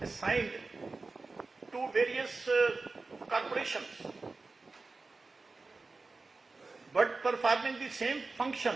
to various corporations, but performing the same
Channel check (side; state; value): left; quieter; 3.7 dB